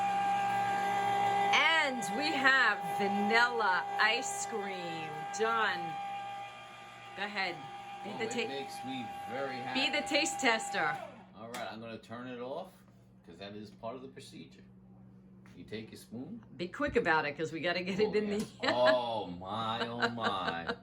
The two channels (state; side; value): identical; both; correlation 1.00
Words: We have vanilla ice cream. John, go ahead. It makes me very happy. Be the taste tester. All right, I'm going to turn it off because that is part of the procedure. You take your spoon. Be quick about it because we got to get it in the... Oh, my, oh, my.